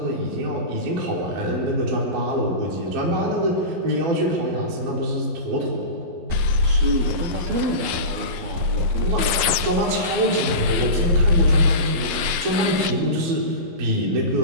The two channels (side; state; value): left; late; 11 ms